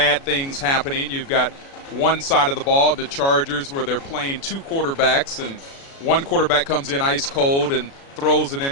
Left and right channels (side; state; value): right; late; 36 ms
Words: things happening. You've got one side of the ball, the Chargers, where they're playing 2 quarterbacks, and one quarterback comes in ice cold and throws an